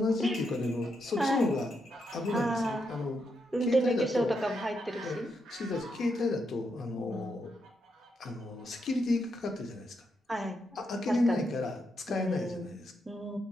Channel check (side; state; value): both; normal; correlation 0.81